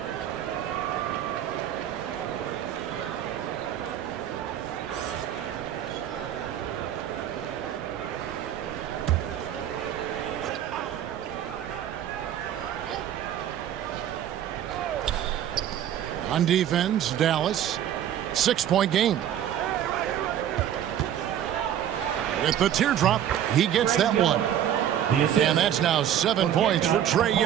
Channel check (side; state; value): left; quieter; 10.5 dB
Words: On defense, Dallas. 6-point game. With the teardrop, he gets that one. And that's now 7 points for Trae